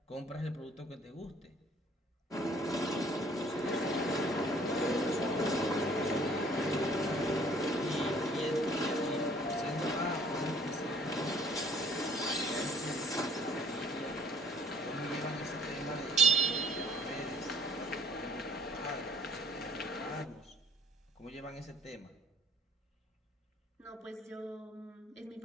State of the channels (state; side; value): normal; both; correlation 0.59